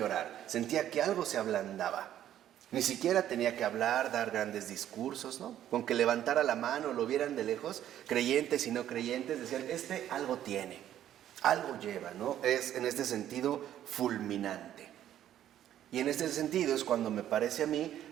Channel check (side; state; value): left; quieter; 11.4 dB